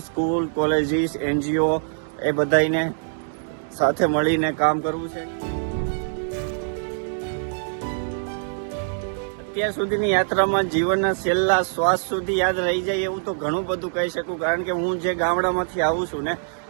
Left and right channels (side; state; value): left; silent; digital silence